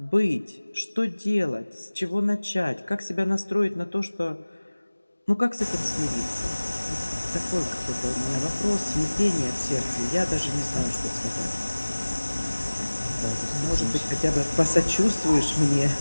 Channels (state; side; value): inverted; both; correlation -1.00